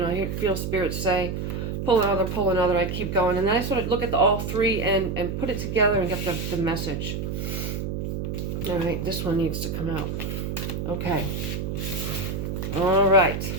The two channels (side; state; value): right; noise; hum, 3 dB below the sound